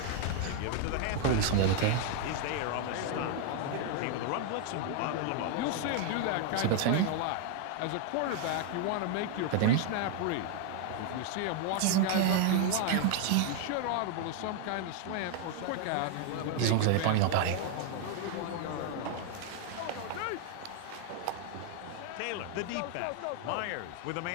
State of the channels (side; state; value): both; different; correlation 0.00